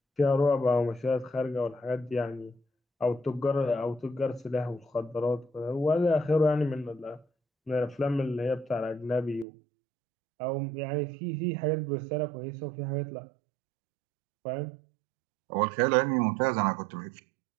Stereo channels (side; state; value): left; drops out; at 9.5 s